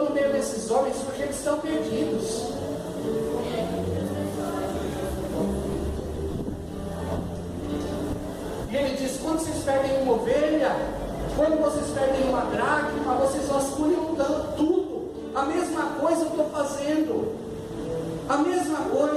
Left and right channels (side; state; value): both; identical; correlation 1.00